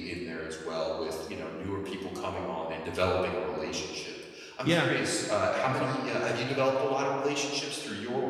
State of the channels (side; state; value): both; identical; correlation 1.00